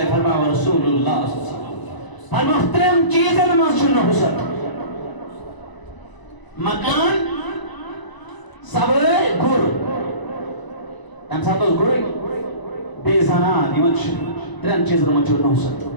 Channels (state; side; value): late; right; 1.0 ms